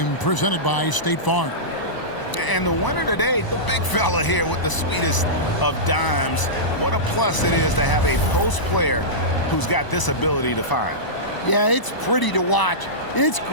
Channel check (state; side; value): late; right; 1.0 ms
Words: presented by State Farm. And the winner today, the big fella here with the sweetest of dimes. What a plus it is to have a post player who's got this ability to find. Yeah, it's pretty to watch. It's